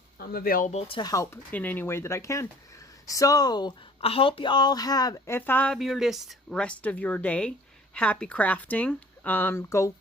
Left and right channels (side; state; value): both; normal; correlation 0.50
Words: available to help in any way that I can. So I hope you all have a fabulous rest of your day. Happy crafting.